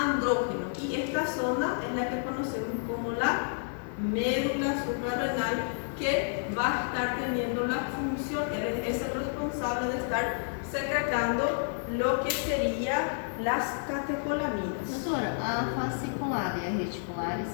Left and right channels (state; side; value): silent; right; digital silence